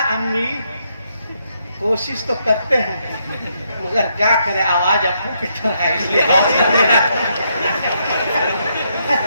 अम्मी कोशिश तो करते हैं मगर क्या करे, आवाज अप्पू की तरह है इसलिए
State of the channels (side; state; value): both; inverted; correlation -0.76